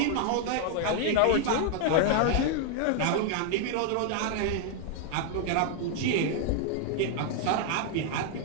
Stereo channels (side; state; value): both; different; correlation 0.00